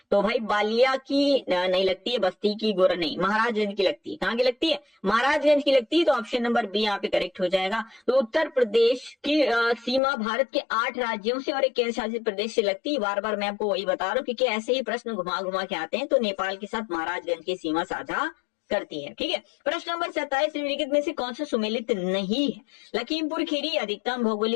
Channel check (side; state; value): right; drops out; at 10.0 s